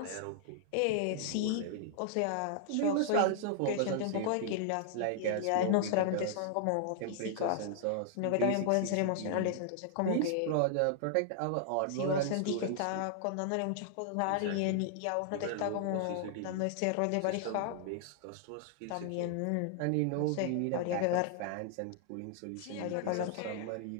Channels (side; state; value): both; different; correlation -0.01